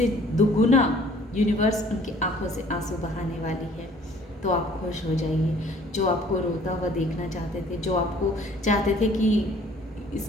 दुगुना यूनिवर्स उनकी आंखों से आंसू बहाने वाली है। तो आप खुश हो जाइए। जो आपको रोता हुआ देखना चाहते थे, जो आपको चाहते थे कि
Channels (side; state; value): both; normal; correlation 0.55